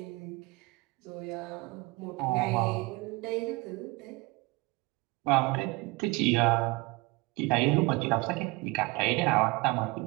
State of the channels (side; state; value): left; quieter; 23.8 dB